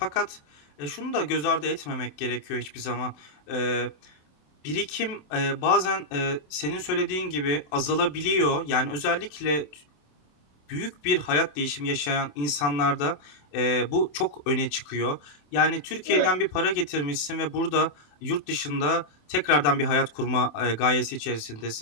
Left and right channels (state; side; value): late; right; 27 ms